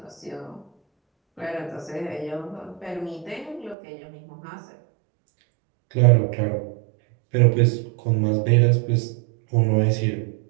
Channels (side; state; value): left; drops out; at 3.8 s